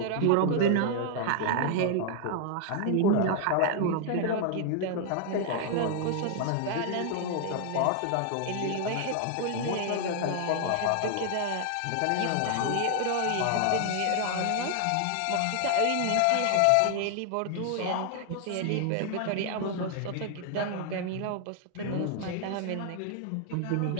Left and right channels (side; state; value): both; different; correlation 0.00